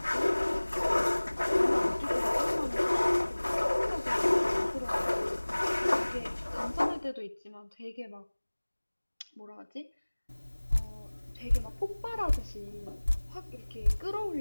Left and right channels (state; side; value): inverted; both; correlation -1.00